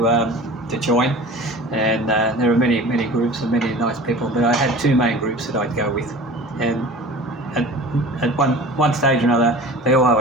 join, and there were many groups and many nice people, but I had two main groups that I'd go with, and at one stage or another, they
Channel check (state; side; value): normal; both; correlation 0.39